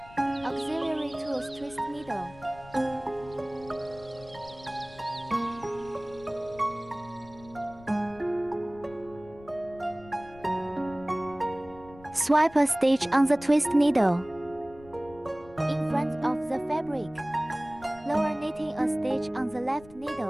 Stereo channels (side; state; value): left; noise; rumble, 21 dB below the sound